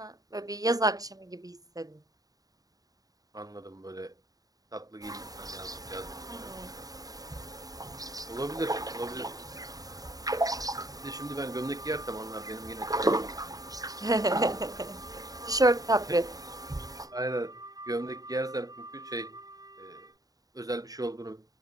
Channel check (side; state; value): left; late; 0.18 ms